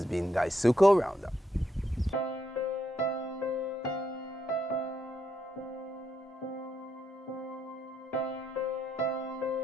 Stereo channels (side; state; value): both; normal; correlation 0.78